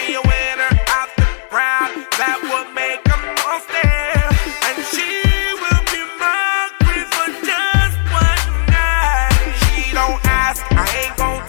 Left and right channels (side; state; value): right; silent; digital silence